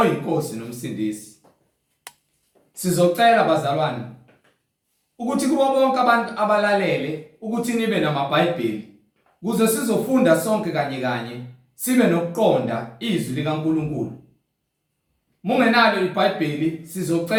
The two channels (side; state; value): both; identical; correlation 1.00